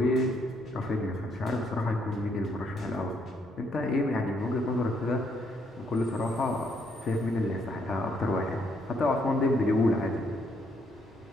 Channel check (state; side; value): normal; both; correlation 0.72